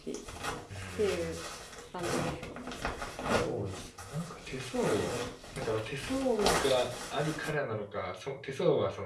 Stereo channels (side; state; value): both; identical; correlation 1.00